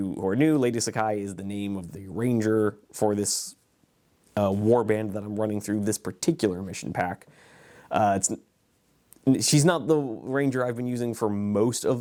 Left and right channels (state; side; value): identical; both; correlation 1.00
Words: who are new, Lady Sakai is the name of the ranger for this warband that I'm running through this particular mission pack. She's not the ranger I've been using for most